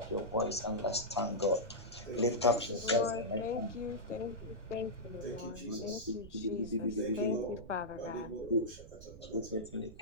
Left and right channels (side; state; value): right; noise; rumble, 16 dB below the sound